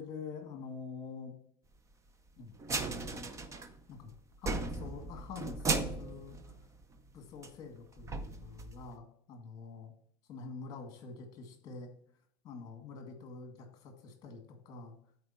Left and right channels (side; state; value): both; normal; correlation 0.26